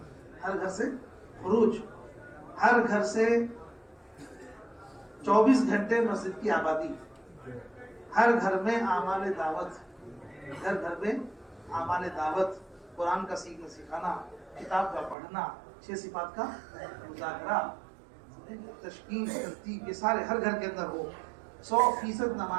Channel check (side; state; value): left; drops out; at 15.2 s